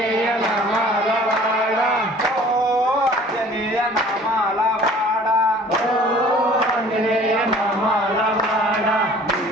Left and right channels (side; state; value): both; normal; correlation 0.50